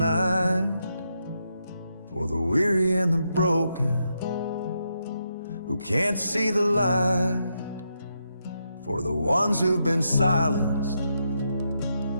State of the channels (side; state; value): both; inverted; correlation -0.82